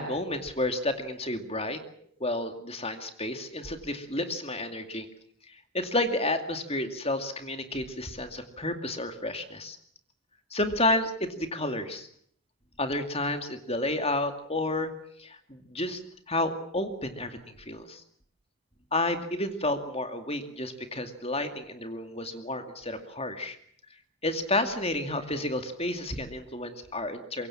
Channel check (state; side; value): normal; both; correlation 0.09